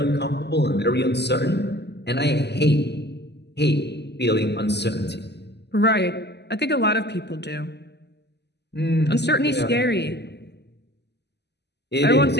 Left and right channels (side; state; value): right; late; 0.50 ms